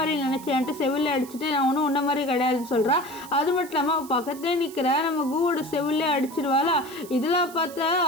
நினச்சேன்ட்டு செவிலில் அடிச்சுட்டு நான் ஒன்றும் உன்ன மாதிரி கிடையாதுன்னு சொல்கிறா. அது மட்டும் இல்லாமல் அவள் பக்கத்துலேயே நிற்கிற நம்ம கூவோட செவிலே அடிச்சிருவாளா. இதெல்லாம் பார்த்தா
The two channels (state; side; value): noise; right; hiss, 18 dB below the sound